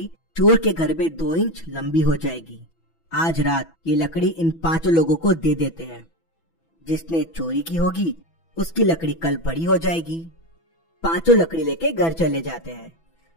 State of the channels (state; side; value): late; right; 6.0 ms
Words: चोर के घर में 2 इंच लंबी हो जाएगी। आज रात ये लकड़ी इन 5 लोगों को दे देते हैं। जिसने चोरी की होगी उसकी लकड़ी कल बड़ी हो जाएगी। 5 लकड़ी लेके घर चले जाते हैं।